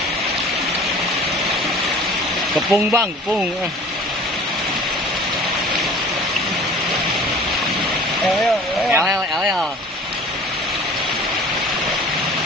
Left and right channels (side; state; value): both; normal; correlation 0.45